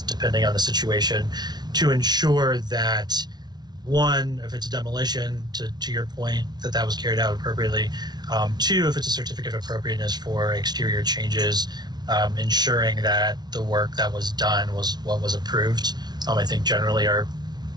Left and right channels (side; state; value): left; late; 0.20 ms